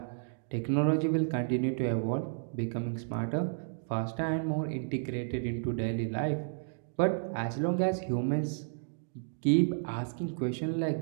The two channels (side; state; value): left; silent; digital silence